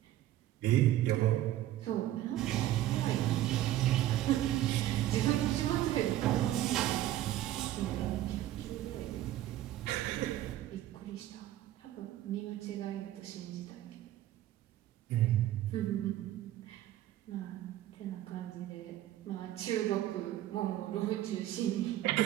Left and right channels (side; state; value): left; quieter; 13.7 dB